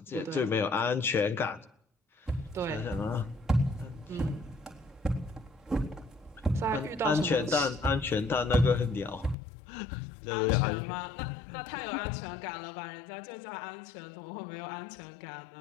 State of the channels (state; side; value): drops out; right; at 9.3 s